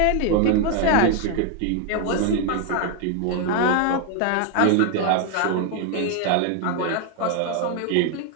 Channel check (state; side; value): different; both; correlation 0.01